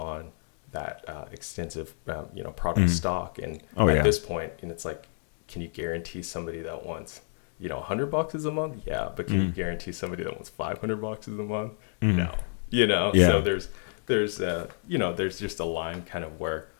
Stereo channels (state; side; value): silent; right; digital silence